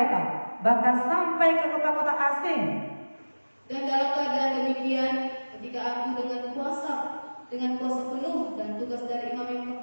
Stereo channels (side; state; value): both; inverted; correlation -1.00